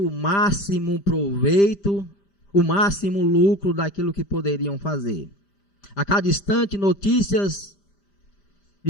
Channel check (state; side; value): late; right; 5.0 ms